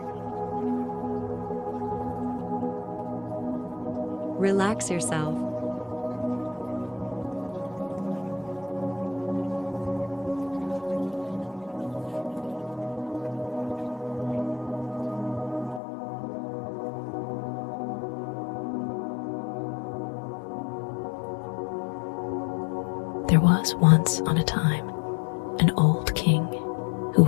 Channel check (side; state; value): right; drops out; at 15.8 s